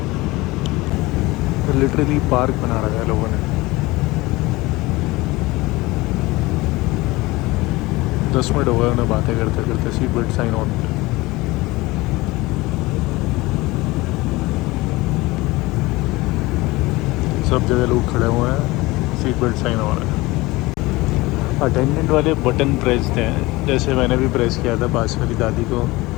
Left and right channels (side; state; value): right; quieter; 21.0 dB